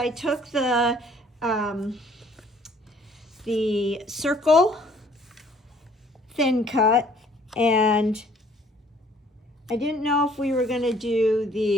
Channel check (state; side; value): normal; both; correlation 0.59